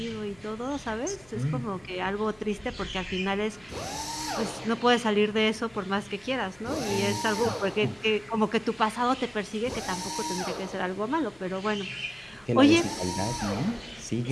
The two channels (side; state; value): left; noise; hum, 28 dB below the sound